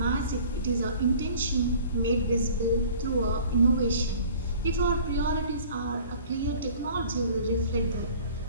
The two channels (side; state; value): both; inverted; correlation -0.48